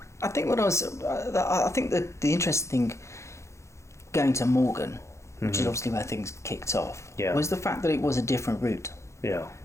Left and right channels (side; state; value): right; late; 0.14 ms